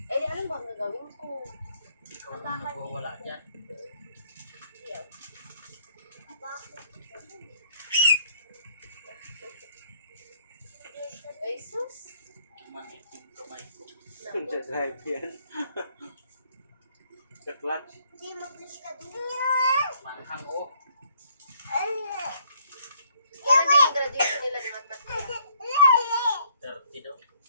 Eh, di alam ba ang gagawin ko? Ikaw ang nagwawala dyan. Ay, sus! Manik yung kamay ko. Naku. Sa drive yan. Sa clutch. Hindi mag-push ka din. Manghang o. Kailan din yung graduation nila ni Matmat nila? 30 daw.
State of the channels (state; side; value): inverted; both; correlation -0.65